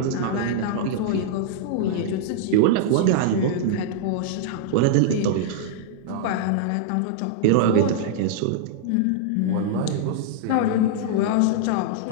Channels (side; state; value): both; different; correlation -0.01